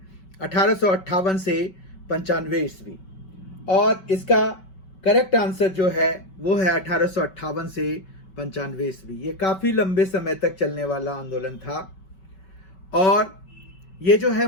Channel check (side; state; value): right; late; 5.2 ms